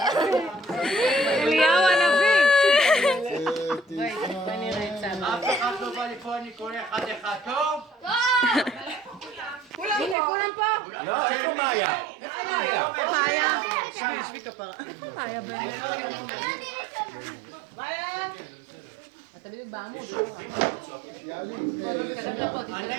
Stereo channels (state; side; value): drops out; left; at 10.2 s